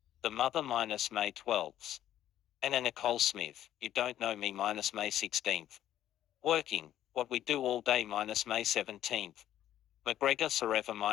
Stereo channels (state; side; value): quieter; right; 12.0 dB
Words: The Mother minus May 12th. Anna Nicole Smith, You Don't Know Me minus May 16th. Working, What We Do All Day minus May 17th. McGregor Forever